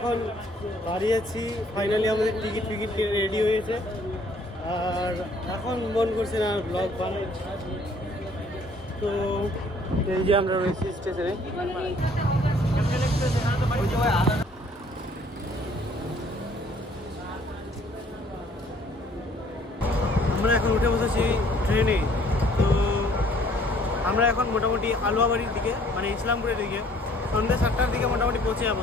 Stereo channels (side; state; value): both; normal; correlation 0.59